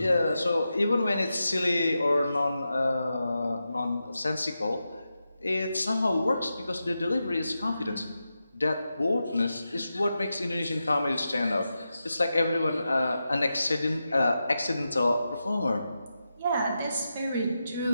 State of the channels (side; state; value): both; inverted; correlation -0.89